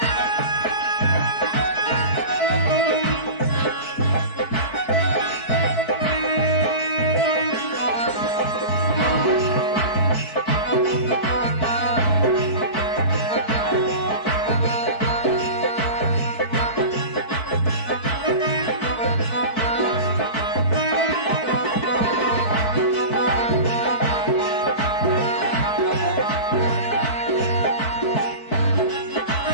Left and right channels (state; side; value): late; right; 4.6 ms